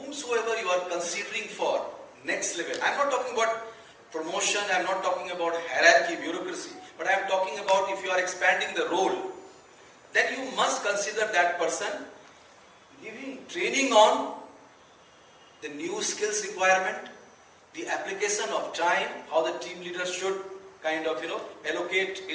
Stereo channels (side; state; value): both; identical; correlation 1.00